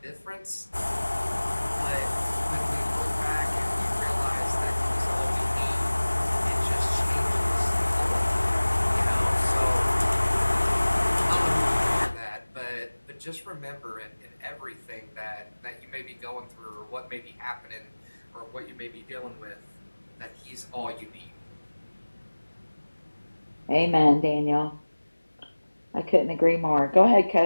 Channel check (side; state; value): both; inverted; correlation -1.00